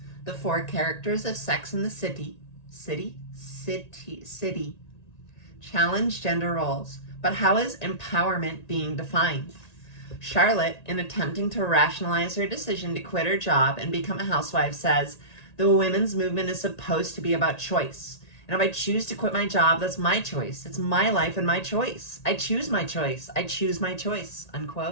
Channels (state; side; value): late; right; 1.9 ms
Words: the four characters of Sex and the City challenge gender roles. But how is empowerment being defined? Charlotte, in attempting to rationalize her decision to quit her job and become a housewife, says, the women's movement is supposed to be about choice. And if I choose to quit my job, that's my choice. It's my life and my choice. I choose my choice. I choose my choice,